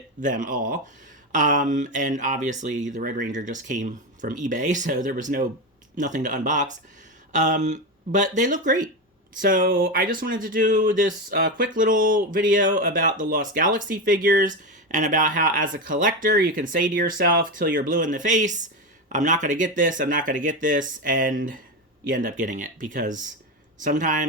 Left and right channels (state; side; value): normal; both; correlation 0.16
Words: them all. And obviously the Red Ranger just came from eBay, so there was nothing to unbox. But they look great. So I just wanted to do this quick little video about the Lost Galaxy figures and about how, as a collector, you can say to yourself till you're blue in the face, I'm not going to get this, I'm not going to get this, and you end up getting it because